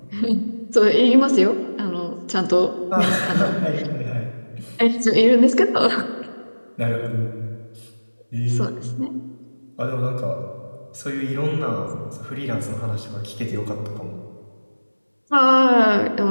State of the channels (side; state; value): both; inverted; correlation -1.00